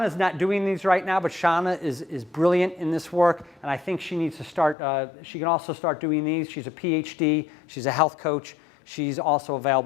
not doing these right now, but Shauna is brilliant in this work, and I think she needs to start, she can also start doing these. She's a PhD, she's a health coach, she's also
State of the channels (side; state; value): right; drops out; at 4.8 s